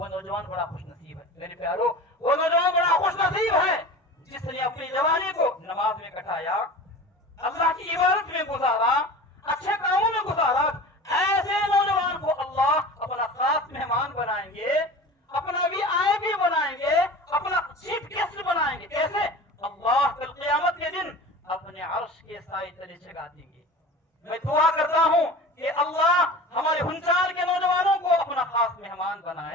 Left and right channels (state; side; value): normal; both; correlation 0.36